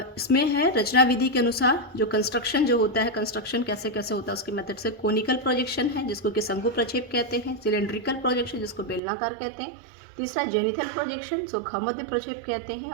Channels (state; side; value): drops out; left; at 9.0 s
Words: इसमें है रचना विधि के अनुसार जो कंस्ट्रक्शन जो होता है, कंस्ट्रक्शन कैसे कैसे होता है उसके मेथड से। कोनिकल प्रोजेक्शन है जिसको कि शंकु प्रक्षेप कहते हैं। सिलेंड्रिकल प्रोजेक्शन जिसको बेलनाकार कहते हैं। तीसरा जेनिथल प्रोजेक्शन जो खमध्य प्रक्षेप कहते हैं।